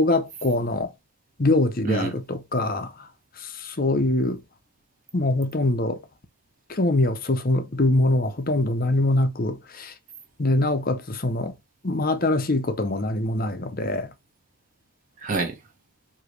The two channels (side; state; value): both; normal; correlation 0.50